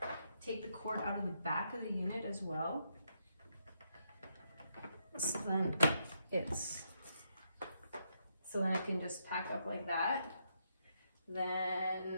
Take the cord out of the back of the unit as well. So then it can just pack up like that.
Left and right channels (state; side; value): inverted; both; correlation -0.78